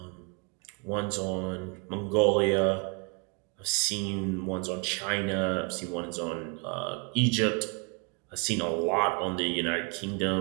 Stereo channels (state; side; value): quieter; left; 33.8 dB